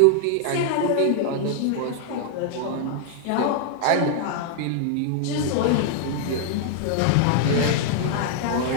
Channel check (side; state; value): both; different; correlation -0.01